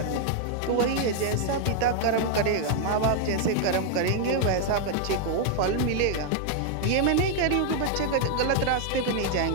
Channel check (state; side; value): different; both; correlation 0.00